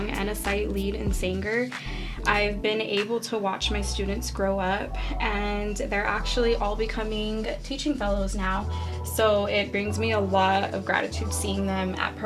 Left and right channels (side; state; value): both; identical; correlation 1.00